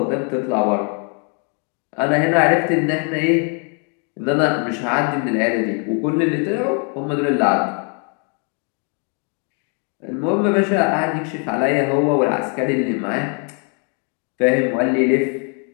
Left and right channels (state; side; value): quieter; right; 39.3 dB